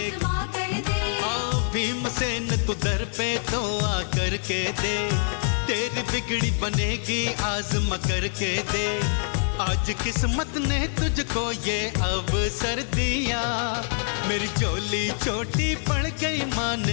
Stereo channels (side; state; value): right; silent; digital silence